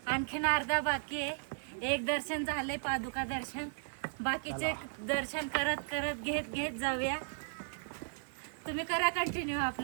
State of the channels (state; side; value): silent; left; digital silence